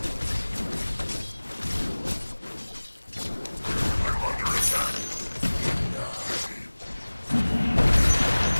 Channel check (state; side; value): inverted; both; correlation -1.00